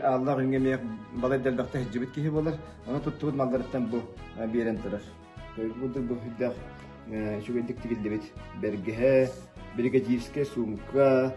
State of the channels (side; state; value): both; identical; correlation 1.00